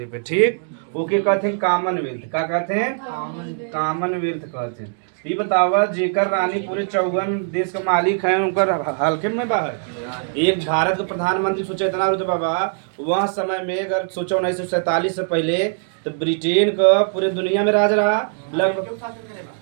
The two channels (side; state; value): left; silent; digital silence